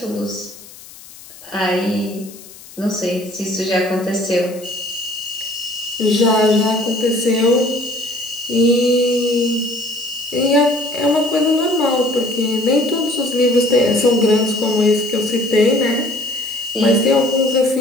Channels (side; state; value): left; noise; hiss, 19 dB below the sound